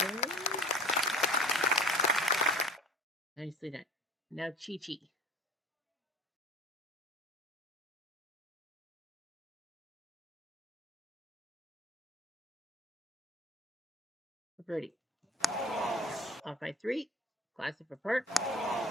Nicely done. Now Chi-Chi. Birdie. Off by 3. Glasson for par.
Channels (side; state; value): both; normal; correlation 0.45